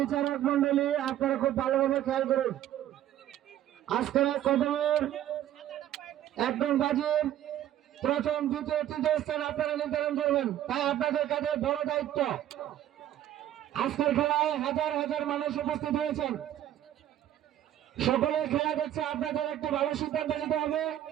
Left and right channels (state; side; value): quieter; left; 12.1 dB